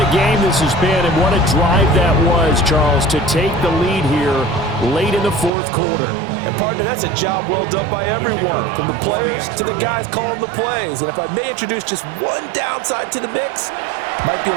game this has been, and what a drive that was, Charles, to take the lead here late in the fourth quarter. And, partner, that's a job well done by everyone, from the players to the guys calling the plays. And if I may introduce just one downside to the mix, might be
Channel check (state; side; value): drops out; left; at 5.5 s